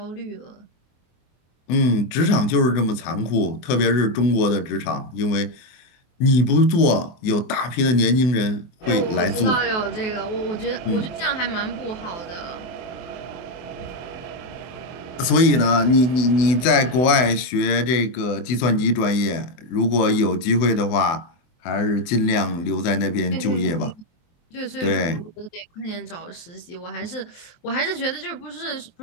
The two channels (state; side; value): late; right; 24 ms